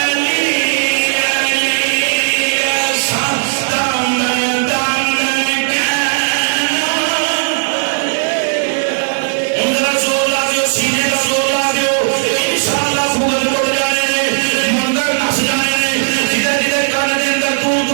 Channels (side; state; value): left; silent; digital silence